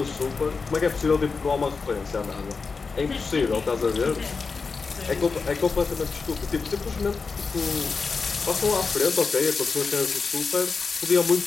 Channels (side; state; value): right; quieter; 4.7 dB